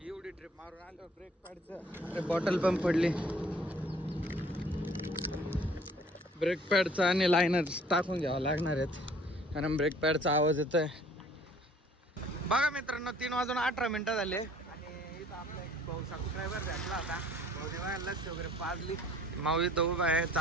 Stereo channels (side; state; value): both; normal; correlation 0.55